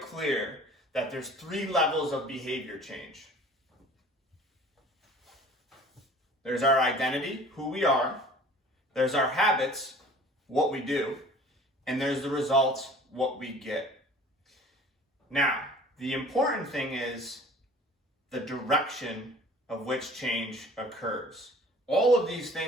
clear that there's 3 levels of behavior change. There's our identity, who we are. There's our habits, what we do. And there's the results, what we get. Now, the important thing is the direction of which change occurs. All of these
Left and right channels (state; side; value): normal; both; correlation 0.48